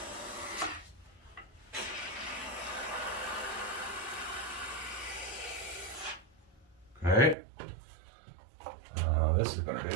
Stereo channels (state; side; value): drops out; left; at 7.4 s